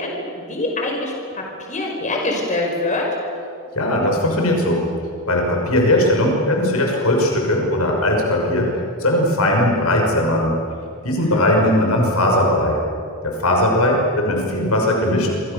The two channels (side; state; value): both; normal; correlation 0.11